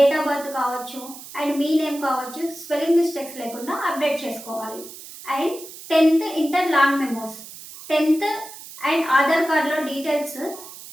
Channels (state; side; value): noise; right; hiss, 15 dB below the sound